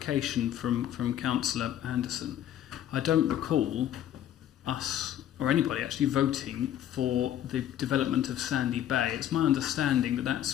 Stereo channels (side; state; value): right; quieter; 11.2 dB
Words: from Councillor Anderson? I don't recall us or anybody actually voting for the development of Sandy Bay. It's my understanding that that's